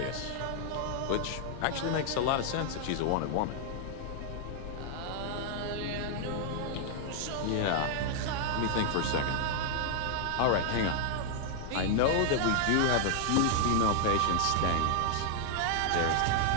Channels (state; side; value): different; both; correlation -0.01